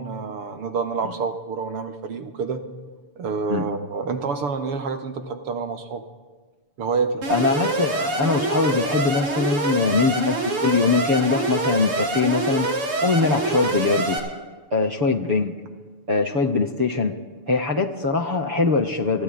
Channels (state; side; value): late; left; 6.9 ms